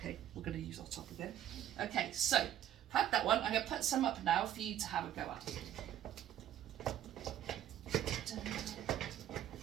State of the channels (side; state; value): left; quieter; 11.5 dB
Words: we're going to use our top again. Okay, so had that one. I'm going to put some up now for you to have a go at.